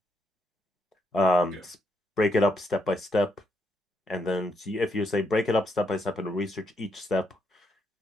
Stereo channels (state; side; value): normal; both; correlation 0.77